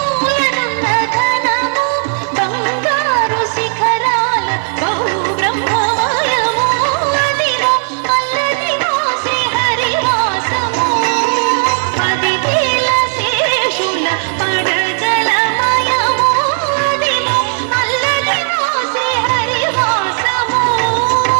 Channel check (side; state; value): left; silent; digital silence